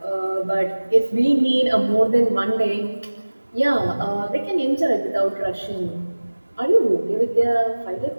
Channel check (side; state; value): both; inverted; correlation -1.00